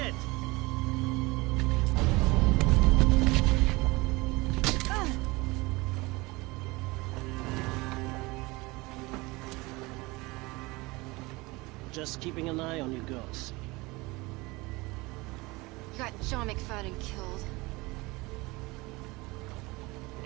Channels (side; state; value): left; quieter; 23.1 dB